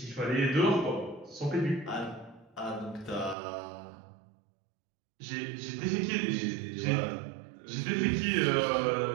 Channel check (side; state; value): left; drops out; at 3.4 s